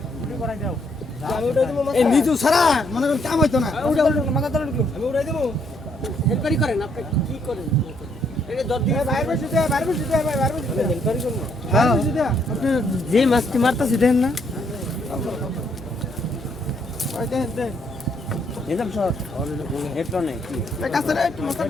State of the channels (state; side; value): normal; both; correlation 0.71